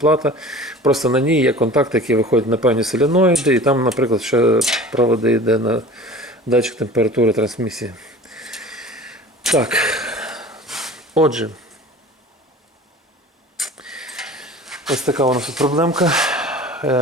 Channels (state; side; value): normal; both; correlation 0.41